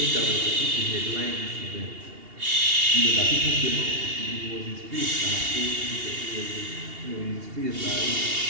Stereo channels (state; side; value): late; left; 2.8 ms